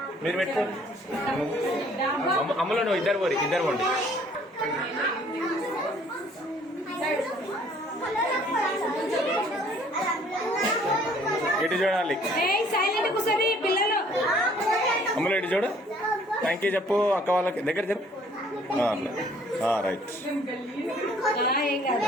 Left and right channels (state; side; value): normal; both; correlation 0.58